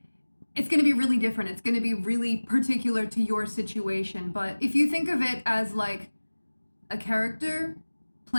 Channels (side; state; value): both; inverted; correlation -1.00